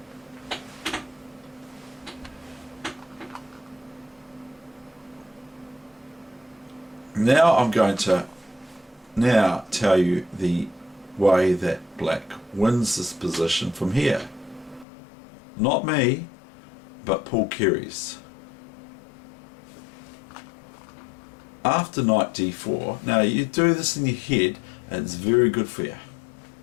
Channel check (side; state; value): right; drops out; at 14.9 s